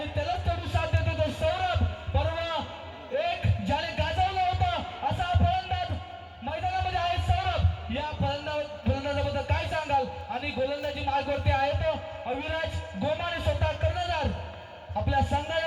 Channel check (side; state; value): both; identical; correlation 1.00